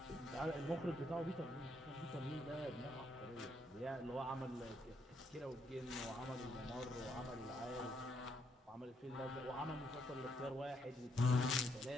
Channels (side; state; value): both; normal; correlation 0.75